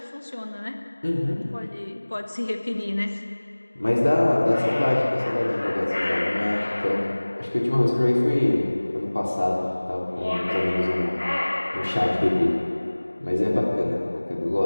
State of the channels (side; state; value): both; inverted; correlation -1.00